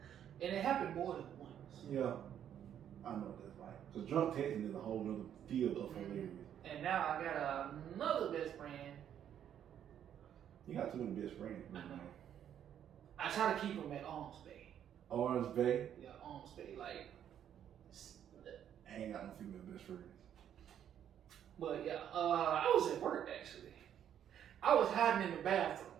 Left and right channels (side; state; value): left; quieter; 9.7 dB